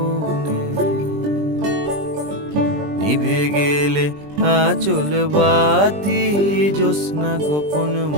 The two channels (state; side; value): late; left; 20 ms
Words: নিভে গেলে আচল বাতি জ্যোৎস্না গোপন